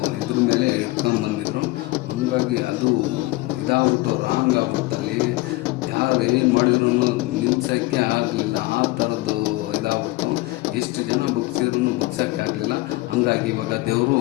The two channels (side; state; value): right; quieter; 20.9 dB